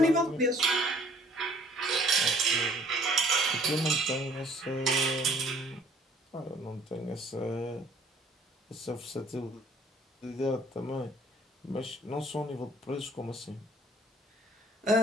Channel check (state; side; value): normal; both; correlation 0.57